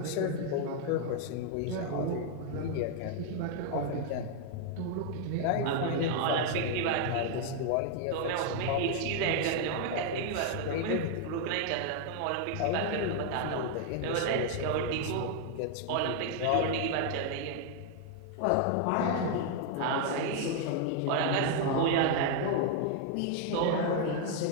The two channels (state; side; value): different; both; correlation 0.00